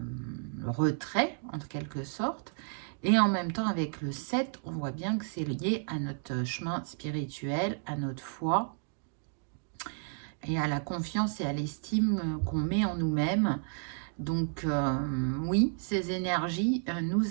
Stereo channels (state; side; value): silent; left; 56 dB below the other